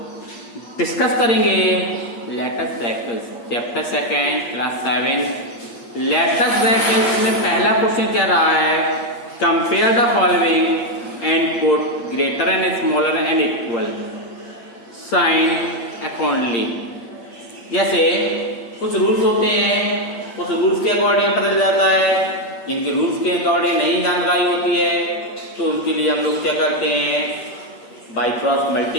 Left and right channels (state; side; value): late; right; 8.6 ms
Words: डिस्कस करेंगे let's brackets, chapter second, class 7। Let's brackets में पहला क्वेश्चन क्या रहा है, compare the following and put greater and smaller and equal sign accordingly. जैसे कुछ रूल्स होते हैं, कुछ रूल्स के अकॉर्डिंग पता चल जाता है, जिनके रूल्स के अकॉर्डिंग नहीं जानकारी होती है तो उनके लिए हम लोग क्या करते हैं, बाई क्रॉस